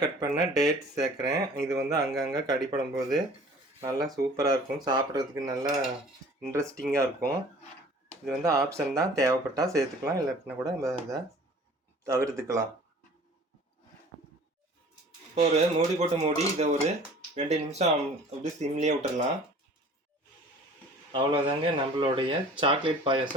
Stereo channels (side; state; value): both; normal; correlation 0.48